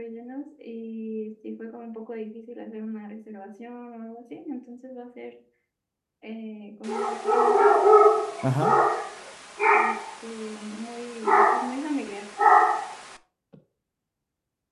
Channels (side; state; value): both; identical; correlation 1.00